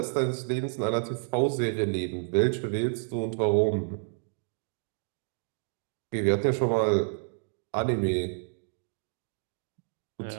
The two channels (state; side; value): silent; left; digital silence